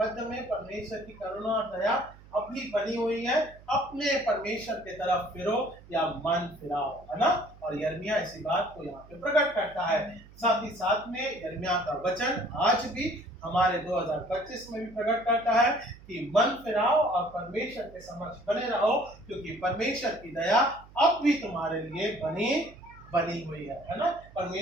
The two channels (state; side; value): noise; right; hum, 22 dB below the sound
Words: मध्य में परमेश्वर की करुणा और दया अब भी बनी हुई है, अपने परमेश्वर की तरफ फिरो या मन फिराओ, है ना। और यिर्मयाह इसी बात को यहाँ पे प्रकट करता है। साथ ही साथ में यिर्मयाह का वचन आज भी हमारे 2025 में भी प्रकट करता है कि मन फिराओ और परमेश्वर के समक्ष बने रहो, क्योंकि परमेश्वर की दया अब भी तुम्हारे लिए बनी हुई है ना।